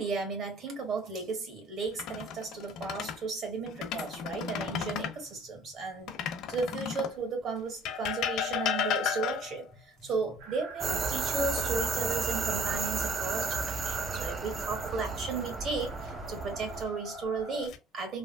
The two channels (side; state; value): both; normal; correlation 0.54